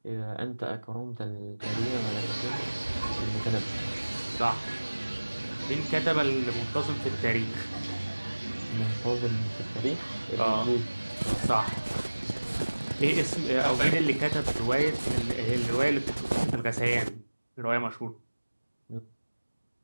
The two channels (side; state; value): both; inverted; correlation -1.00